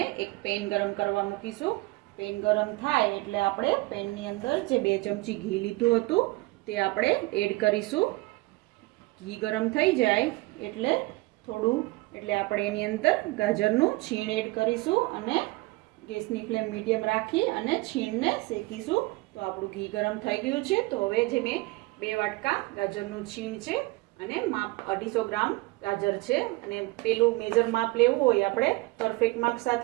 એક પેન ગરમ કરવા મૂકીશું। પેન ગરમ થાય એટલે આપણે પેનની અંદર જે 2 ચમચી ઘી લીધું હતું તે આપણે એડ કરીશું। ઘી ગરમ થઈ જાય એટલે આપણે એની અંદર ગાજરનું છીણ એડ કરીશું અને ગેસની ફ્લેમ મીડિયમ રાખી અને છીણને શેકીશું। તો આપણું ઘી ગરમ થઈ ગયું છે। તો હવે જે મેં 2 વાટકા ગાજરનું છીણ છે અને માપ 250 ગ્રામ ગાજર છે, અને પેલું મેજર માપ લેવું હોય, આપણે પરફેક્ટ માપ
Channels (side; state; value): left; quieter; 22.4 dB